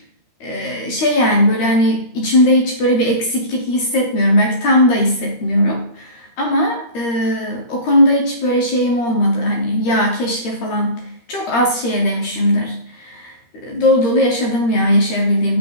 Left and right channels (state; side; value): late; right; 13 ms